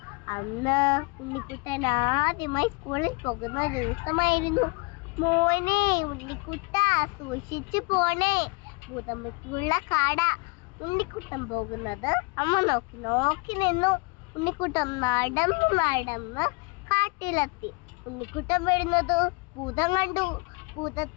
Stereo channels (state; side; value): quieter; right; 29.5 dB